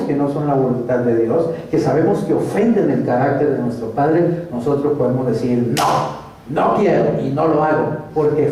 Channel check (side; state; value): both; identical; correlation 1.00